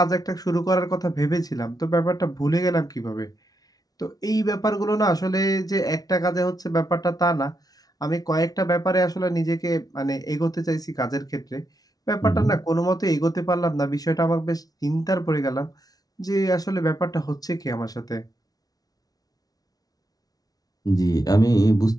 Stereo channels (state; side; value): late; right; 0.18 ms